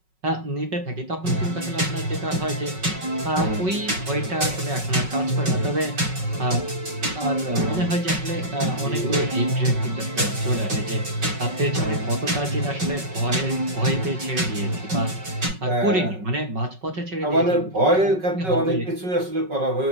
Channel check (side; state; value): left; late; 5.4 ms